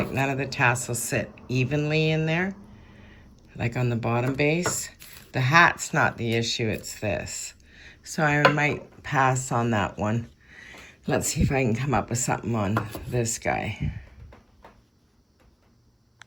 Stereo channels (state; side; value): identical; both; correlation 1.00